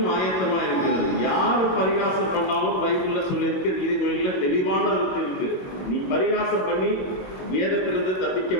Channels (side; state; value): right; late; 22 ms